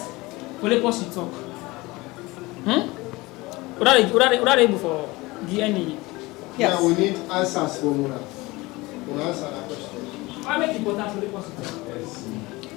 for the person to talk? What are they able for DNA? Yes. Yeah, we need answers from Muna. We'll answer that question. Why make it important for the person to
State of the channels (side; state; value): right; quieter; 21.9 dB